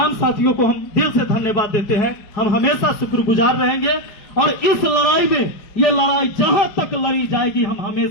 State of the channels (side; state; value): right; late; 5.1 ms